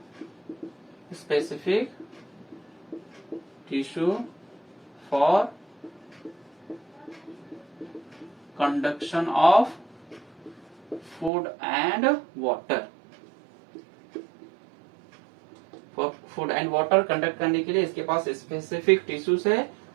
tissue for conduction of food and water। Food and water conduct करने के लिए इसके पास स्पेसिफिक टिश्यूज है,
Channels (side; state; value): left; drops out; at 11.3 s